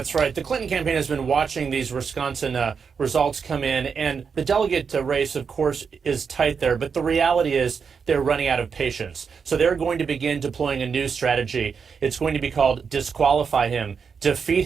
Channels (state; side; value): quieter; left; 6.0 dB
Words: right. The Clinton campaign has been watching these Wisconsin results come in, and the delegate race, of course, is tight there. But the reality is they're running out of patience. So they're going to begin deploying a new strategy. It's going to be called disqualify him, defeat